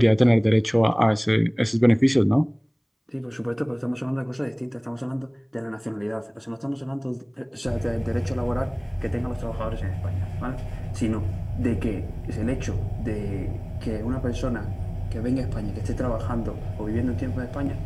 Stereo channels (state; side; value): identical; both; correlation 1.00